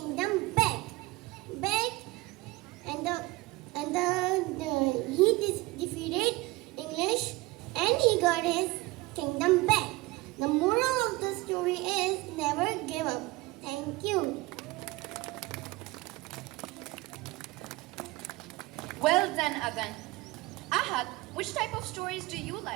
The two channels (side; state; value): left; quieter; 21.5 dB